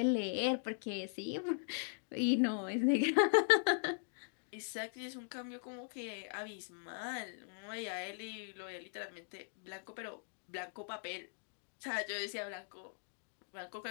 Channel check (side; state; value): right; silent; digital silence